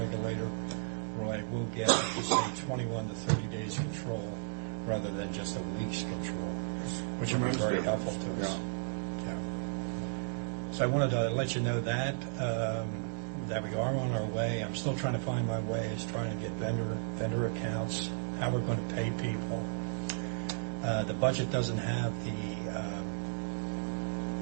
where I will get, say, 21 to 30 days control rather than just a week's control, which will be very helpful to us. Yeah. So I wanted to let you know that we are on our way. I'm still trying to find my ways, trying to get vendor accounts, how we're going to pay people. The budget doesn't have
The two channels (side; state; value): left; silent; digital silence